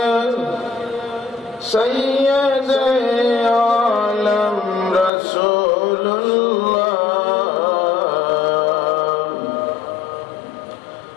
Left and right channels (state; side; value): drops out; right; at 5.1 s